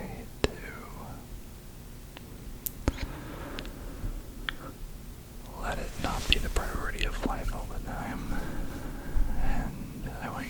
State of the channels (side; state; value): both; identical; correlation 1.00